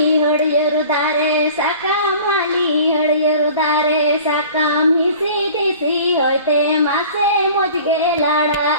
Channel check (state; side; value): inverted; both; correlation -0.44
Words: ಹೊಡೆಯರು ದಾರೆ সাকামালি হড়িয়ರು ದಾರೆ সাকাম হিসি দিসি হইতে মাসে মজগে লাড়া